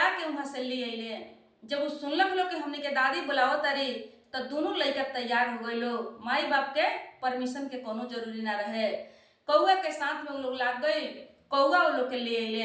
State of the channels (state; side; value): identical; both; correlation 1.00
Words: के वहां से ले अले। जब वो सुनलक लोग कि हमने के दादी बुलाओ तारी, तो दोनों लड़का तैयार हो गए लोग, माई बाप के परमिशन के कोनो जरूरी ना रहे। कौआ के साथ में वो लोग लाग गई, कौआ वो लोग के ले